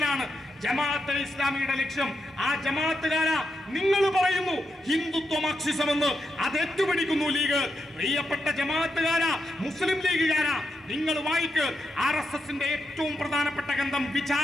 ജമാഅത്തെ ഇസ്ലാമിയുടെ ലക്ഷ്യം. ആ ജമാഅത്തുകാരാ നിങ്ങൾ പറയുന്നു ഹിന്ദുത്വ മാർക്സിസം എന്ന്, അത് ഏറ്റുപിടിക്കുന്നു ലീഗ്. പ്രിയപ്പെട്ട ജമാഅത്തുകാരാ, മുസ്ലിം ലീഗുകാരാ, നിങ്ങൾ വായിക്ക് RSSന്റെ ഏറ്റവും പ്രധാനപ്പെട്ട ഗ്രന്ഥം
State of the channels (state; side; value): normal; both; correlation 0.84